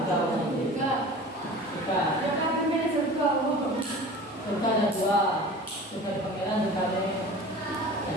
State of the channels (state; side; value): normal; both; correlation 0.39